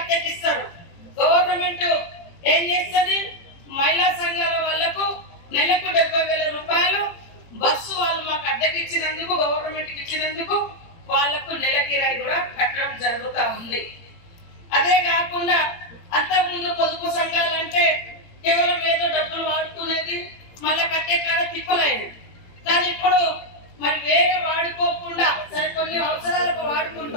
గవర్నమెంట్ ఏం చేస్తుంది? మహిళా సంఘాల వాళ్లకు నెలకు 70,000 రూపాయలు బస్సు వాళ్ళు మాకు అద్దెకి ఇచ్చినందుకు, గవర్నమెంట్ కి ఇచ్చినందుకు వాళ్లకు నెల కిరాయి కూడా కట్టడం జరుగుతూ ఉంది. అదే కాకుండా అంతకుముందు పొదుపు సంఘాలంటే కేవలం ఏదో డబ్బులు వాడుకునేది, మళ్ళా కట్టే కాడ తిప్పలేదు. కానీ ఇప్పుడు మరి వేరే వాడుకోకుండా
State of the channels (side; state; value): right; late; 17 ms